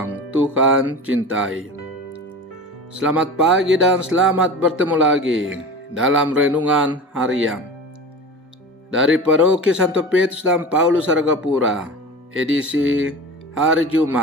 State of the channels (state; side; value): normal; both; correlation 0.32